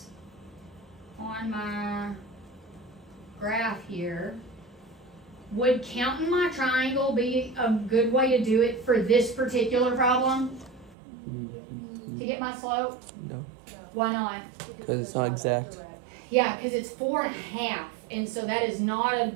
on my graph here, would counting my triangle be a good way to do it for this particular problem? To get my slope? No. Why not? Because it's not exact. Yeah, because it's 4.5, and so that is not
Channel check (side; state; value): left; drops out; at 11.0 s